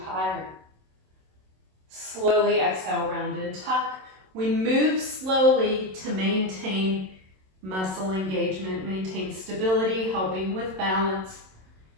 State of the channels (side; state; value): left; late; 27 ms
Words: higher. Slowly exhale, round and tuck. We move slowly to maintain muscle engagement, maintain stability, helping with balance.